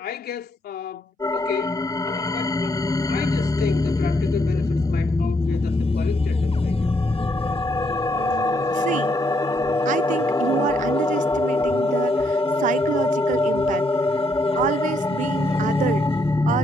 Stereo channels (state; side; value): normal; both; correlation 0.74